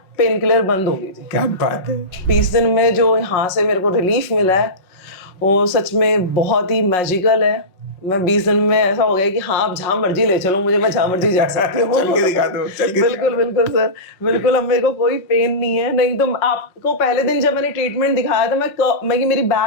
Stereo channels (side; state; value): right; late; 5.5 ms